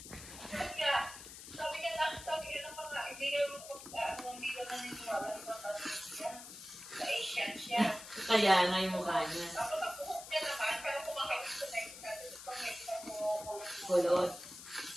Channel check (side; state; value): left; noise; hiss, 13 dB below the sound